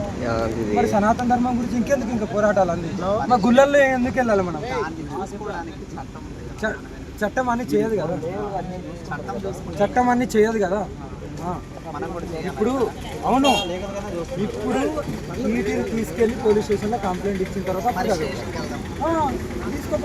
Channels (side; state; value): both; identical; correlation 1.00